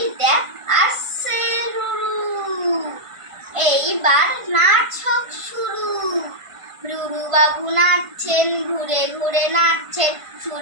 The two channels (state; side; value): late; left; 1.5 ms